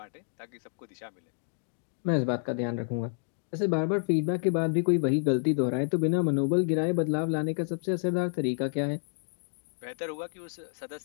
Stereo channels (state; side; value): silent; right; digital silence